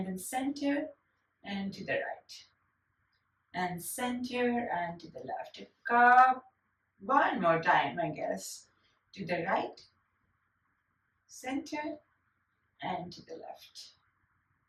then center and to the right. and center and to the left. A cup. One more time, I guess. To the right, center, and to the left,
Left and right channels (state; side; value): identical; both; correlation 1.00